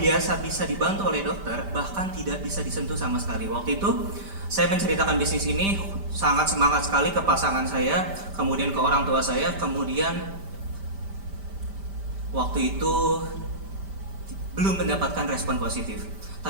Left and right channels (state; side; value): late; left; 5.1 ms